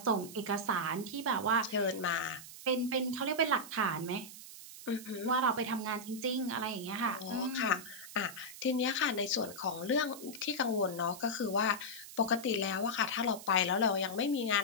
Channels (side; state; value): right; noise; hiss, 14 dB below the sound